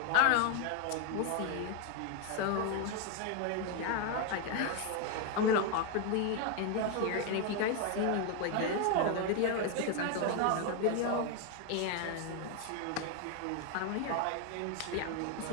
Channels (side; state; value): both; different; correlation 0.01